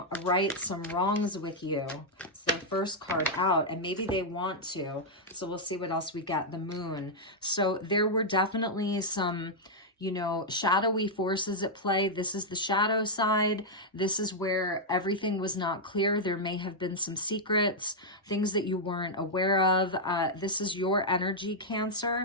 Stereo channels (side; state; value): both; normal; correlation -0.05